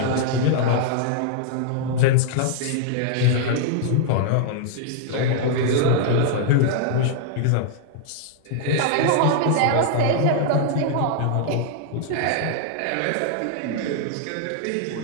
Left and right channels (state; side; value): different; both; correlation -0.01